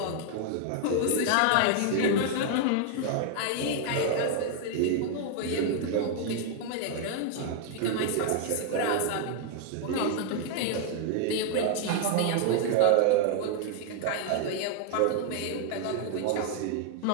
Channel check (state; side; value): different; both; correlation 0.00